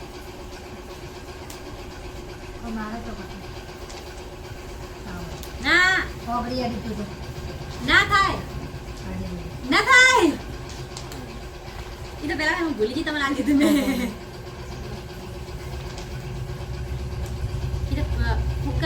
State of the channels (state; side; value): identical; both; correlation 1.00